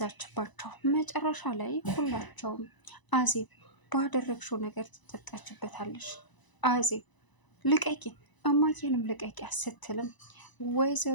መጨረሻ ላይ ሁላቸውም አዜብ ባደረግሽው ነገር ትጠጣችበታለሽ፣ አዜብ ልቀቂን፣ እማዬንም ልቀቂያ ስትልም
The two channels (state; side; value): late; right; 1.0 ms